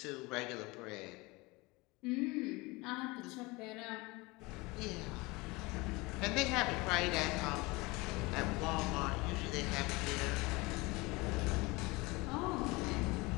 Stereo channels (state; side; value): quieter; right; 23.8 dB